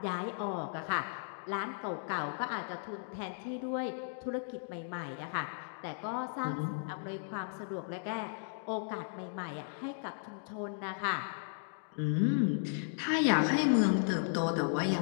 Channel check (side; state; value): right; silent; digital silence